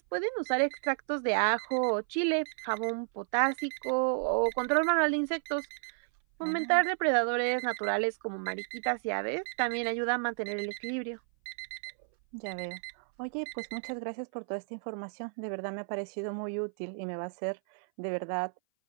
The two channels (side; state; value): left; silent; 57 dB below the other